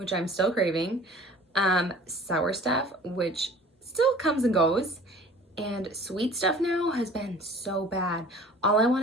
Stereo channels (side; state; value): both; normal; correlation 0.47